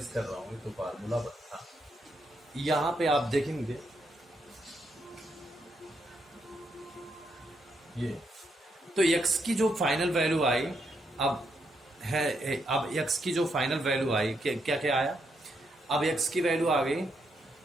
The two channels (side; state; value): both; normal; correlation 0.78